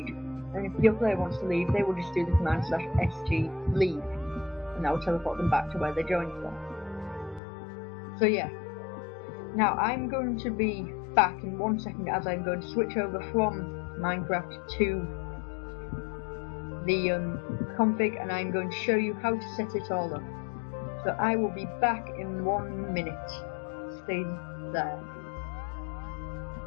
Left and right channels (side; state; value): right; drops out; at 7.4 s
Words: And if your player wants to leave, they will just do the command /SG leave, and that will teleport them back to where they joined from. So yeah, now I'm going to be back in 1 second as I'm going to switch over from Minecraft to the config, and I'm going to show you how to set it all up. So I will be back in 1 minute. Stay there.